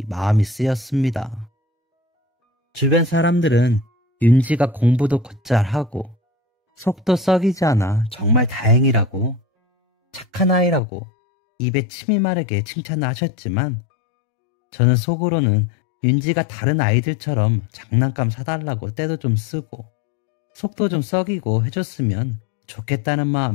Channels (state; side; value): drops out; right; at 10.8 s